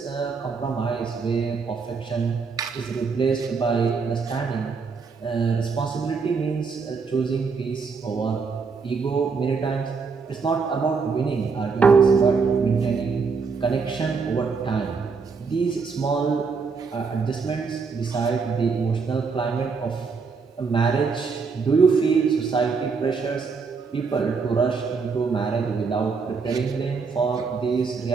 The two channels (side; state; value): left; quieter; 5.1 dB